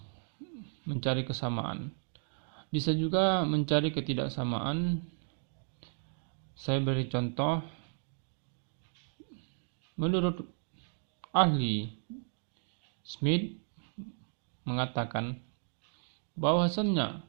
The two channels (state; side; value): silent; left; 55 dB below the other